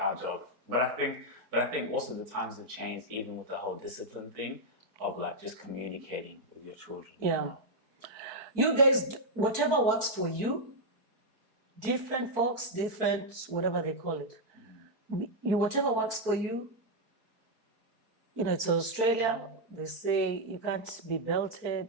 job. But I think also the times have changed, even with the whole discipline thing of like just communicating with your children. Yeah. You guys, whatever works for you, different folks, different, whatever they call it. Whatever works for you, it's Australia, they say you can't be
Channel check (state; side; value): late; left; 4.5 ms